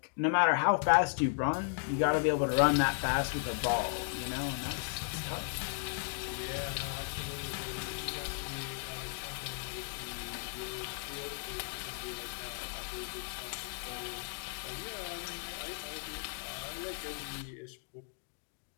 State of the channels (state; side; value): silent; right; digital silence